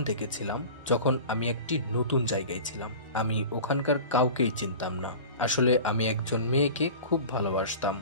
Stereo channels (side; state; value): both; inverted; correlation -0.36